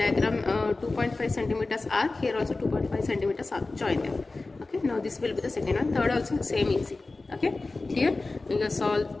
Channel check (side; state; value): right; quieter; 3.4 dB